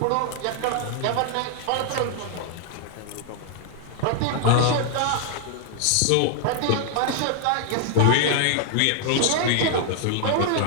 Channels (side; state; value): both; different; correlation 0.00